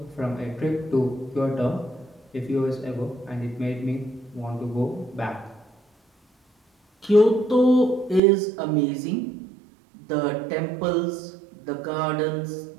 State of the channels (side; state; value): left; drops out; at 8.2 s